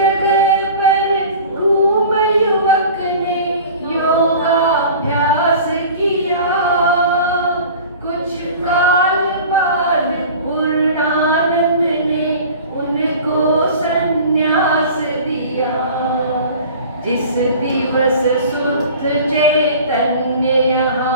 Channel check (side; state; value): both; inverted; correlation -0.41